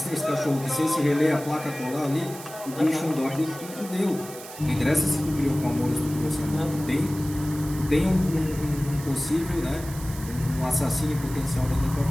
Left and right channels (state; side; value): noise; right; hiss, 14 dB below the sound